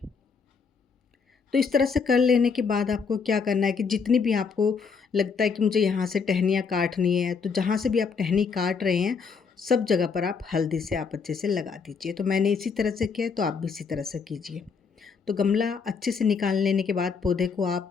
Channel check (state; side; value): quieter; right; 5.5 dB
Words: तो इस तरह से कर लेने के बाद आपको क्या करना है कि जितनी भी आपको लगता है कि मुझे यहाँ से टहनियाँ काटनी है, तो जहाँ से भी आप टहनी काट रहे हैं सब जगह पर आप हल्दी से आप अच्छे से लगा दीजिए। तो मैंने इसी तरह से किया, तो आप भी इसी तरह से कीजिए। तो गमला अच्छे से निकाल लेने के बाद पौधे को आप